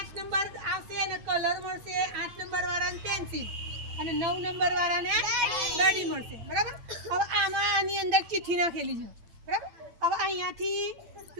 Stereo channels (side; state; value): left; late; 8.9 ms